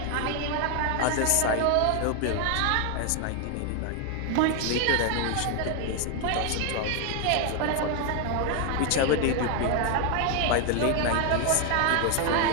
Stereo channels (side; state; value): both; different; correlation 0.01